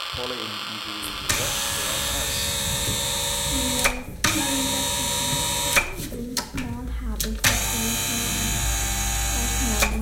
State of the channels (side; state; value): both; identical; correlation 1.00